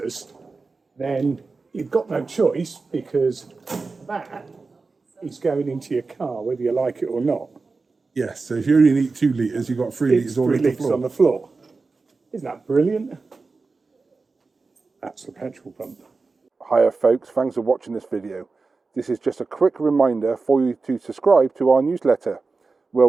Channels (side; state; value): left; quieter; 4.1 dB